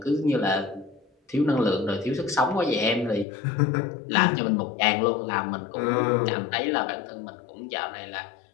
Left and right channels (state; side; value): drops out; right; at 3.2 s